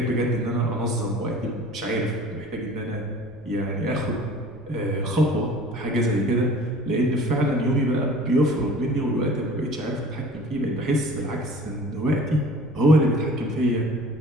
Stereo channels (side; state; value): right; noise; rumble, 22 dB below the sound